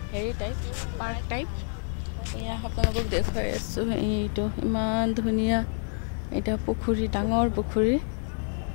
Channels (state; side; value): silent; right; 59 dB below the other